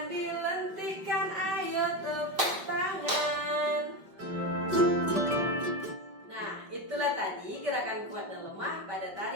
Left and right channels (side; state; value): left; late; 5.2 ms